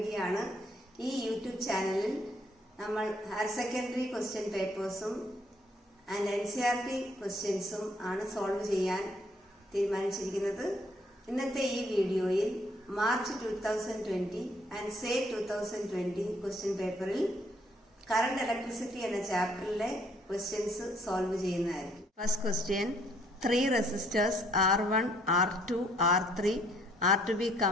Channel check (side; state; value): both; normal; correlation 0.65